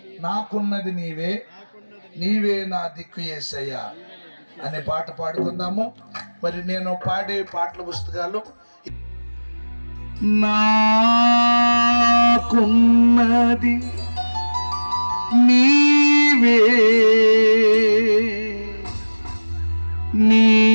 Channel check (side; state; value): both; inverted; correlation -1.00